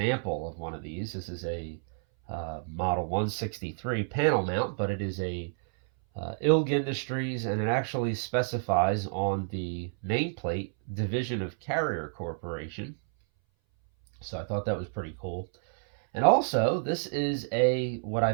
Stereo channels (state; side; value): silent; left; 58 dB below the other